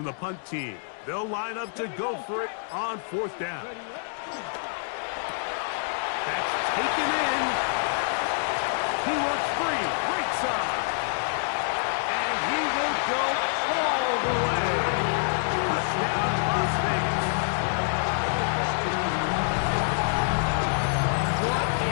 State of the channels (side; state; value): right; silent; digital silence